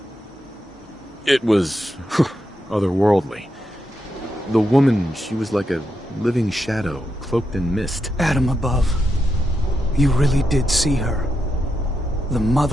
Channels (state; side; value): normal; both; correlation 0.84